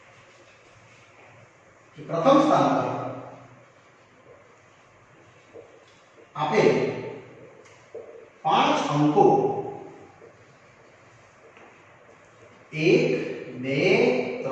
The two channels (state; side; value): identical; both; correlation 1.00